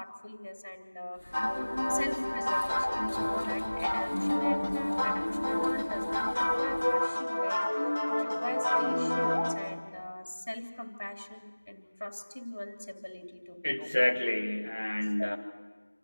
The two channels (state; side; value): inverted; both; correlation -1.00